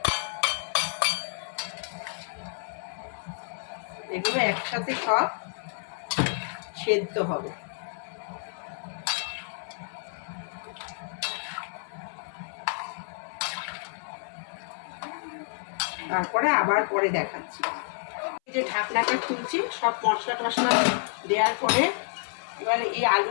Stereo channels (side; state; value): right; silent; 58 dB below the other